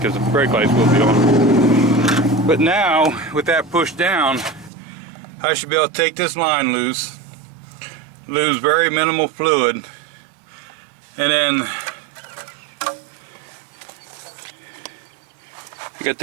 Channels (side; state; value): left; drops out; at 4.7 s